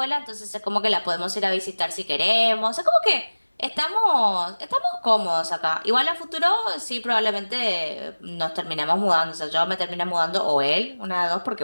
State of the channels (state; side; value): inverted; both; correlation -1.00